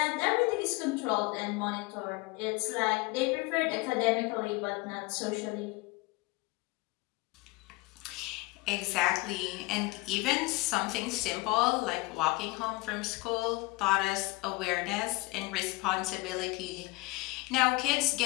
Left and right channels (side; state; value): right; quieter; 23.1 dB